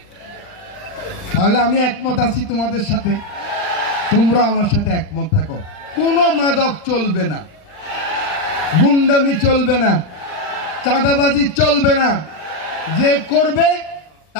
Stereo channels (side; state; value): right; late; 39 ms